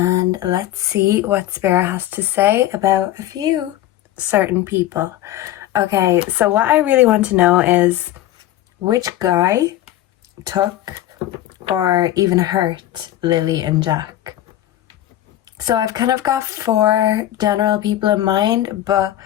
let's see what Spirit has to say about a few certain people. Okay, so what I really want to know is which guy took or even hurt Lilly and Jack. So I've kind of got 4 general people in mind, but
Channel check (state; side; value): quieter; right; 13.5 dB